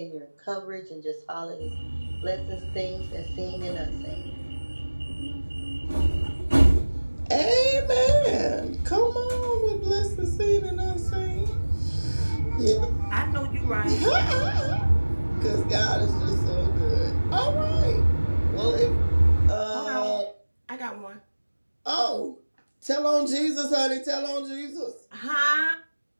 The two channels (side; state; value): both; inverted; correlation -1.00